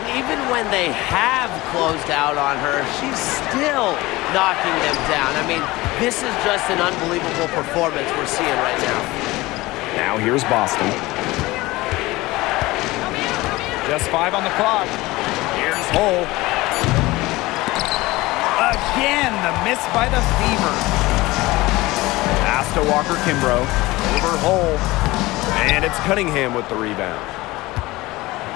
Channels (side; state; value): right; quieter; 20.0 dB